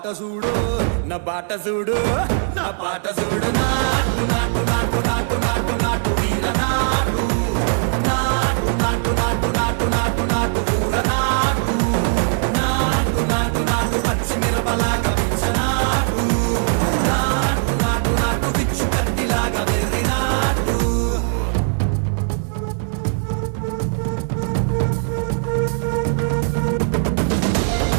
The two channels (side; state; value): left; silent; 66 dB below the other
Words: చూడు నా పాట చూడు నా పాట చూడు నాటు నాటు నాటు నాటు నాటు నాటు వీర నాటు